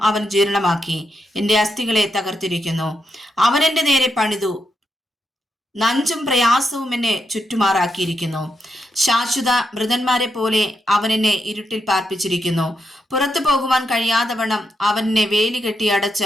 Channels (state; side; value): normal; both; correlation 0.83